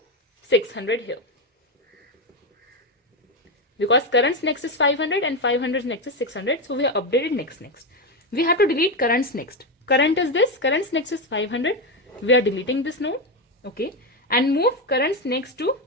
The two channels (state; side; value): normal; both; correlation 0.11